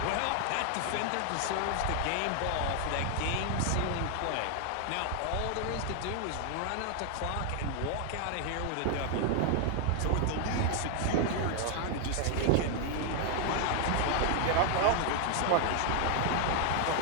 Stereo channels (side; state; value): both; different; correlation 0.00